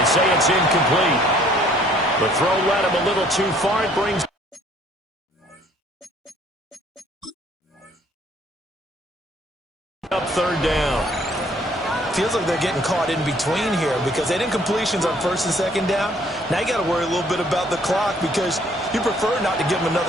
say it's incomplete. The throw led him a little too far. It brings third down. Feels like they're getting caught in between here because they didn't completions on first and second down. Now you got to worry a little bit about the clock because you prefer not to give them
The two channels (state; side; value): normal; both; correlation 0.61